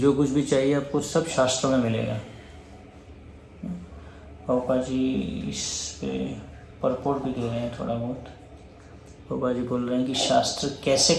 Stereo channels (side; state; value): both; identical; correlation 1.00